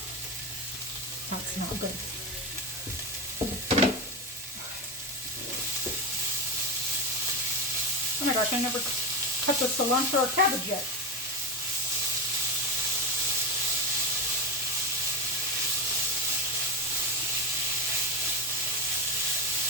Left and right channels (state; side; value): normal; both; correlation 0.17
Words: that's not good. Oh my gosh, I never cut the cilantro or cabbage yet.